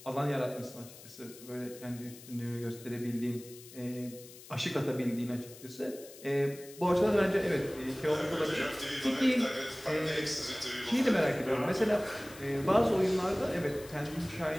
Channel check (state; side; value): noise; left; hiss, 18 dB below the sound